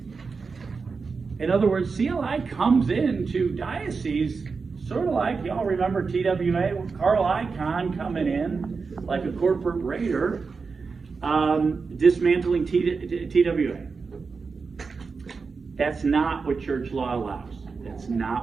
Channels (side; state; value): left; quieter; 4.8 dB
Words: In other words, CLI comes into dioceses sort of like, y'all remember TWA, Carl Icahn coming in like a corporate raider, dismantling TWA. That's not what church law allows. That's